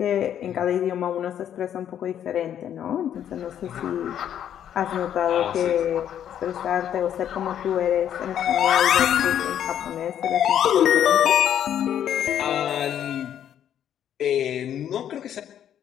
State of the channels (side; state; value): right; quieter; 10.0 dB